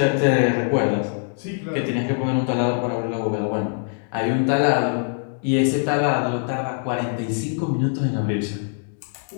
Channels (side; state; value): right; silent; 63 dB below the other